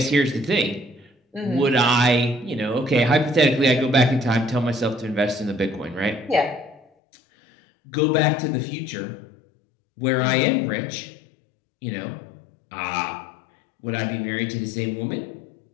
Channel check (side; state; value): right; drops out; at 6.8 s